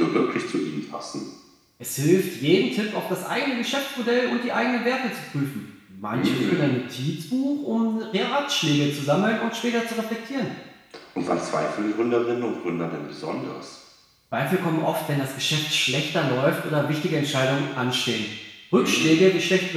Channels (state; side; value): identical; both; correlation 1.00